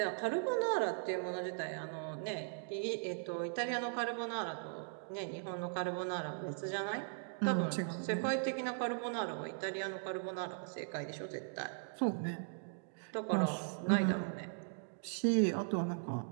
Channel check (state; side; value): silent; left; digital silence